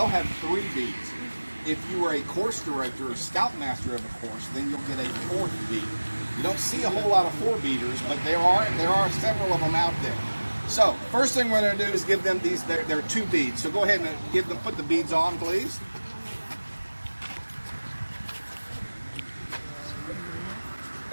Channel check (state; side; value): inverted; both; correlation -1.00